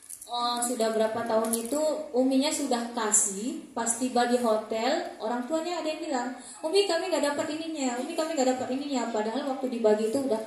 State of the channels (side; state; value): both; identical; correlation 1.00